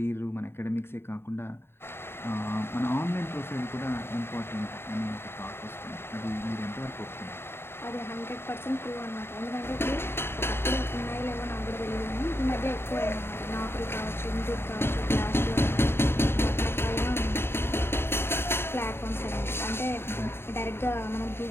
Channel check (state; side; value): late; right; 0.11 ms